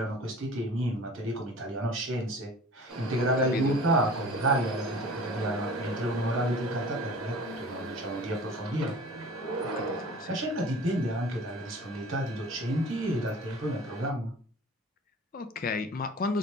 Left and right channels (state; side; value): normal; both; correlation 0.43